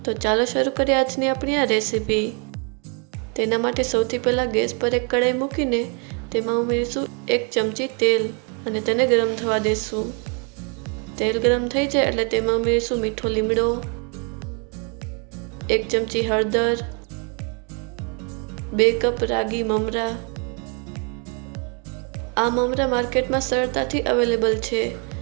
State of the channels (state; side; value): quieter; left; 36.6 dB